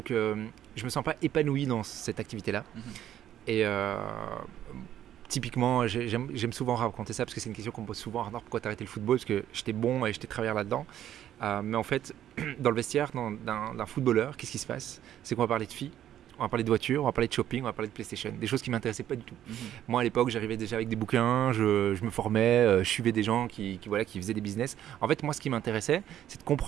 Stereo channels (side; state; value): left; quieter; 11.4 dB